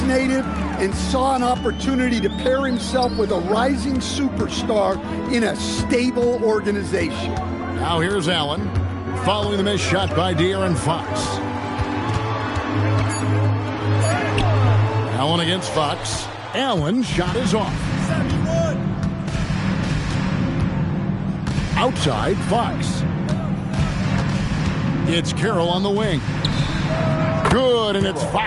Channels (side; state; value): both; identical; correlation 1.00